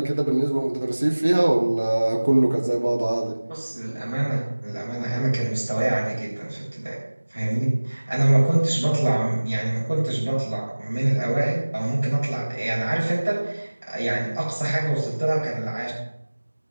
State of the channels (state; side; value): inverted; both; correlation -1.00